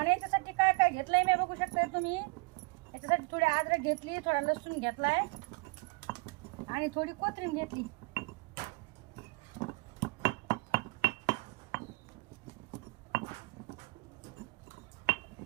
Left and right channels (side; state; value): left; quieter; 27.3 dB